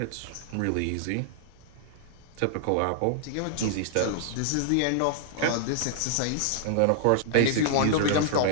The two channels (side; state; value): both; different; correlation -0.01